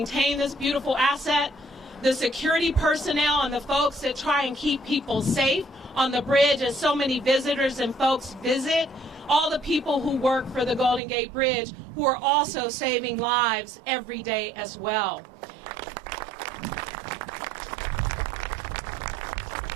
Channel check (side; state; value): left; drops out; at 11.0 s